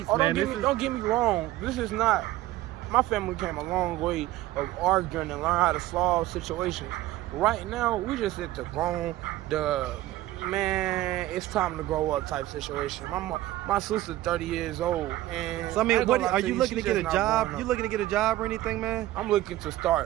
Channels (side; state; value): left; quieter; 15.7 dB